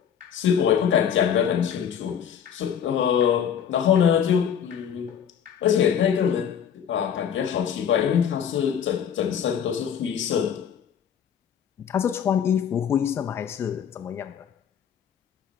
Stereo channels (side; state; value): right; quieter; 8.3 dB